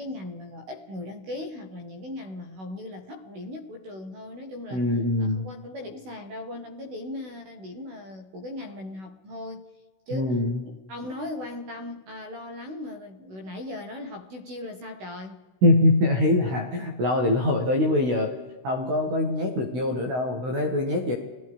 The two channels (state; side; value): late; left; 16 ms